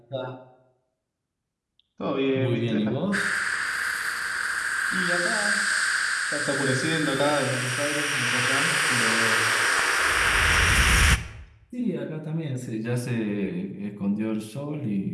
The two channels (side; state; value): both; identical; correlation 1.00